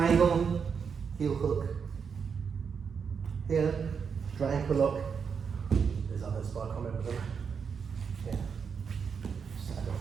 heel hook. Here, straight ankle lock. There's others, but I can't remember them. Here. Saddle.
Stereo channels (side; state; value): left; quieter; 6.3 dB